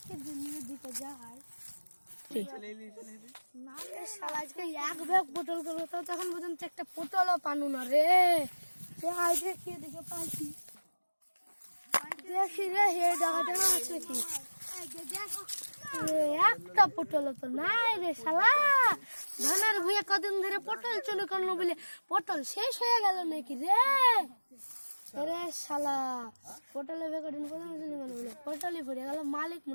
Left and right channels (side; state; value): both; inverted; correlation -1.00